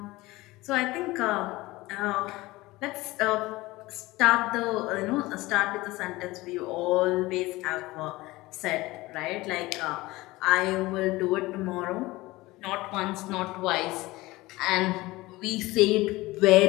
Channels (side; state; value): right; quieter; 19.9 dB